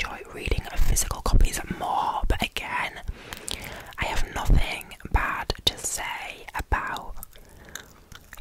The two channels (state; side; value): identical; both; correlation 1.00